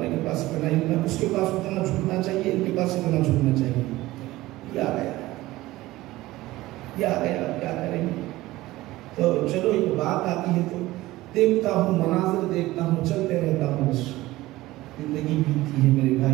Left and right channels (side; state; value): left; quieter; 17.8 dB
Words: کے پاس اتنا علم ہے، اس کے پاس اتنا جھکنا چاہیے، ان کے پاس اتنا جھکنا چاہیے۔ یہ آ گیا، یہ آ گیا، کیا کریں گے؟ تو چلو ایک بات آتی ہے تو دیکھتا ہوں، مناظر دیکھتا ہوں، چلتے رہتا ہوں، بس زندگی بیتتی ہے میرے